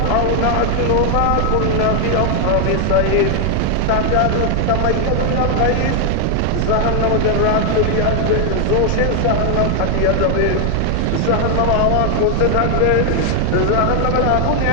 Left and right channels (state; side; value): different; both; correlation 0.00